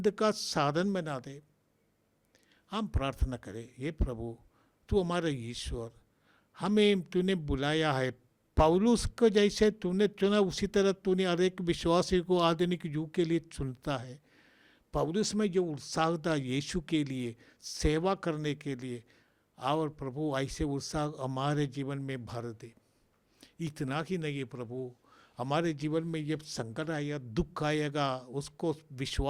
का साधन बना दे। हम प्रार्थना करें, हे प्रभु तू हमारा ईश्वर, हमें तूने बुलाया है। पौलुस को जैसे तूने चुना उसी तरह तूने हर एक विश्वासी को आधुनिक युग के लिए चुनता है। पौलुस में जो उत्साह था यीशु के लिए सेवा करने के लिए, और प्रभु ऐसे उत्साह हमारे जीवन में भर दे। इतना ही नहीं प्रभु, हमारे जीवन में जब संकट आएगा, दुख आएगा, उसको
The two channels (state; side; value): identical; both; correlation 1.00